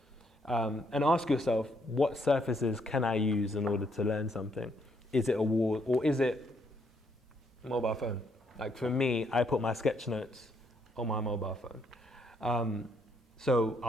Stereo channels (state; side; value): normal; both; correlation 0.73